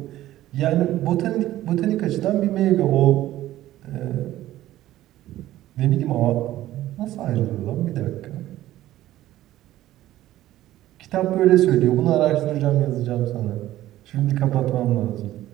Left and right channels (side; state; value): left; quieter; 14.5 dB